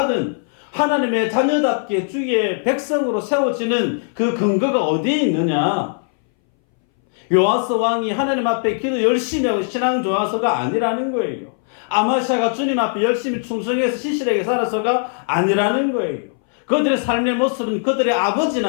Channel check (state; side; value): silent; right; 62 dB below the other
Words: 하나님의 자녀답게 주의 백성으로 세워지는 그 근거가 어디에 있느냐? 요아스 왕이 하나님 앞에 기도 열심히 하고 신앙 좋아서가 아니라는 거예요. 아마샤가 주님 앞에 열심히 충성해서 신실하게 살아서가 아니라는 거예요. 그들의 삶의 모습은 그들의